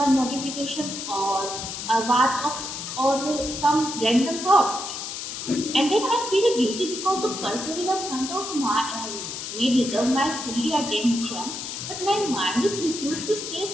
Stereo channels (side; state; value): left; noise; hiss, 7 dB below the sound